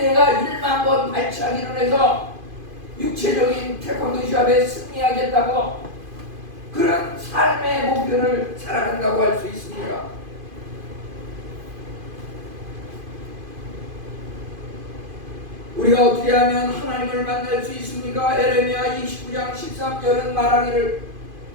1만 번 발차기를 해서 육체적인 태권도 시합에 승리하겠다고 그런 삶의 목표를 살아간다고 할 수 있습니다. 우리가 어떻게 하면 하나님을 만날 수 있습니까? 에레미야 29장 13절은 말하기를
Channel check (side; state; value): left; late; 2.5 ms